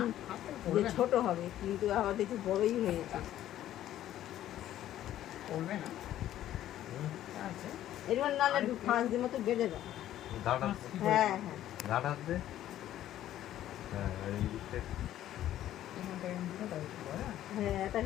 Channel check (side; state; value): right; quieter; 12.6 dB